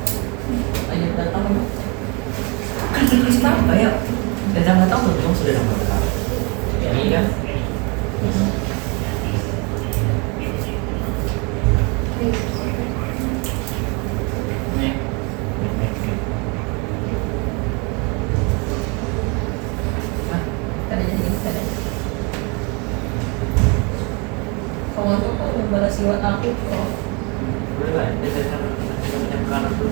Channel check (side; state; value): left; quieter; 31.0 dB